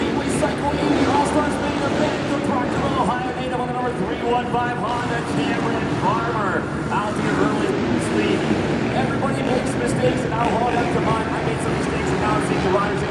Cycle 80 All-Stars main event, the Proctorville, Ohio native on the number 315 Honda, Cameron Farmer. Out to your early lead. Everybody makes mistakes, and I'll hold up to mine. I made some mistakes, and now I'm seeing the riders in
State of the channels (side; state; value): both; identical; correlation 1.00